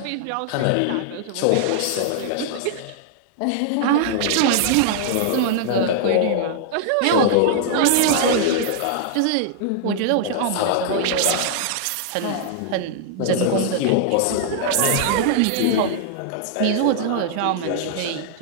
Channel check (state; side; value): different; both; correlation -0.01